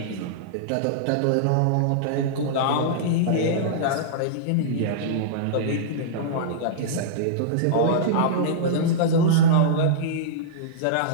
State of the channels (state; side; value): different; both; correlation -0.03